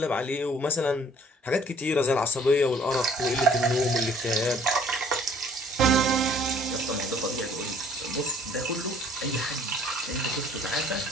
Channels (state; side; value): normal; both; correlation 0.57